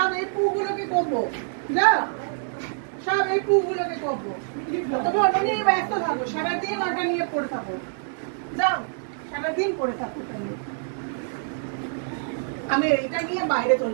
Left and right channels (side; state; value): left; silent; digital silence